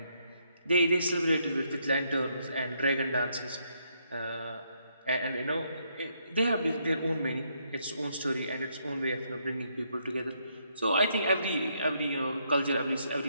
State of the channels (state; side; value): inverted; both; correlation -0.74